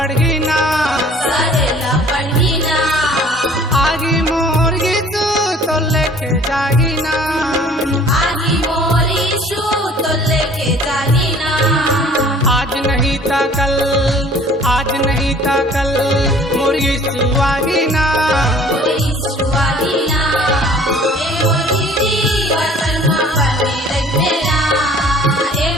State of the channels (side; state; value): both; normal; correlation 0.52